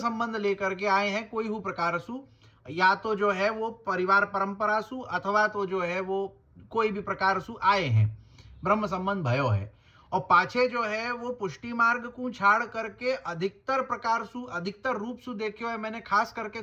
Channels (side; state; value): both; identical; correlation 1.00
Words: लेकर के आए हैं कोई हु प्रकार सु, या तो जो है वो परिवार परंपरा सु अथवा तो जो है वो कोई भी प्रकार सु आए हैं, ब्रह्म संबंध भयो है, और पाछे जो है वो पुष्टि मार्ग को छाड़ करके अधिकतर प्रकार सु अधिकतर रूप सु देखे हुए मैंने, खास करके